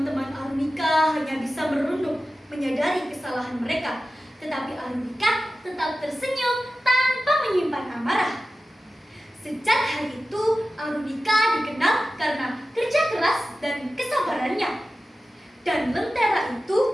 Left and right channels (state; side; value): normal; both; correlation 0.94